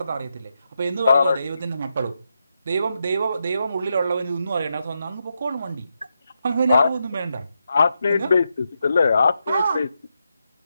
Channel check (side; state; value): both; inverted; correlation -0.85